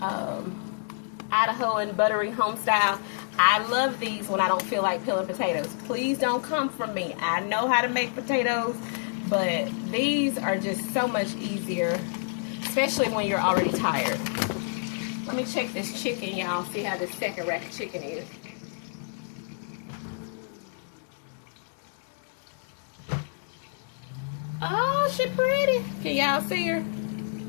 buttery home style. I love these when I don't feel like peeling potatoes. Please don't come from me. I know how to make potatoes, but these are just so much easier, especially when you're already tired. Let me check this chicken, y'all. See how this second rack of chicken is. Oh, she pretty. Can y'all see her?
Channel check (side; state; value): right; silent; digital silence